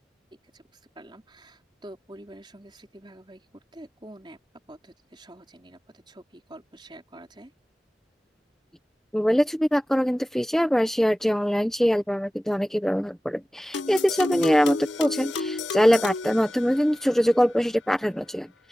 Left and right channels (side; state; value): both; normal; correlation 0.96